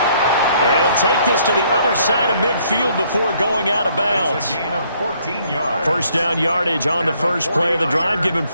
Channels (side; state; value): both; inverted; correlation -0.66